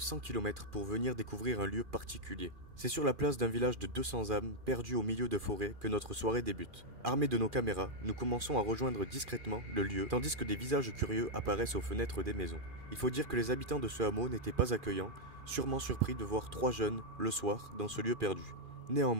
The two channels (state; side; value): late; left; 2.4 ms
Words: km pour venir découvrir un lieu particulier. C'est sur la place d'un village de 200 âmes, perdu au milieu de forêts, que notre soirée débute. Armés de nos caméras, nous commençons à rejoindre discrètement le lieu, tandis que des visages curieux apparaissent aux fenêtres des maisons. Il faut dire que les habitants de ce hameau n'étaient pas accueillants, sûrement surpris de voir 3 jeunes, le soir, dans ce lieu perdu.